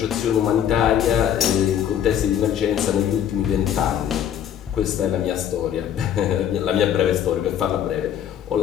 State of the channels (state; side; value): quieter; right; 9.7 dB